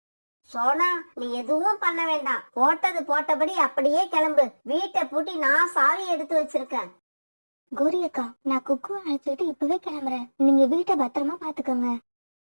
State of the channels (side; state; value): both; inverted; correlation -1.00